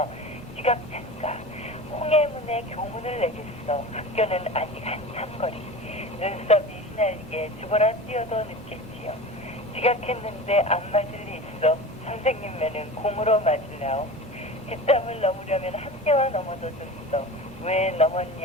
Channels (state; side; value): normal; both; correlation 0.33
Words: 지각한가. 홍해문에 교문을 내겠어. 학교는 아직 한참 거리. 눈썹이 휘날리게 죽어라 뛰어도 늦겠지요. 지각했는데 안 맞을 리 있어. 선생님매는 공으로 맞으려오. 뒷담을 넘으려면 학교와 넘어도 줬어. 왜